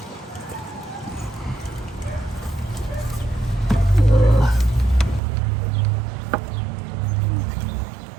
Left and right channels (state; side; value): drops out; left; at 5.2 s